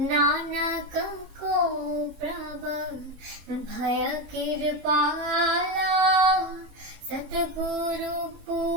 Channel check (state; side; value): late; left; 21 ms